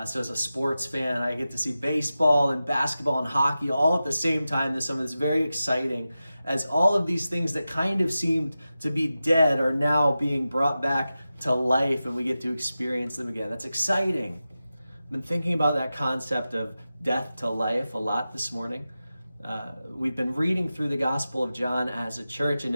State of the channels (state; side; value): inverted; both; correlation -0.93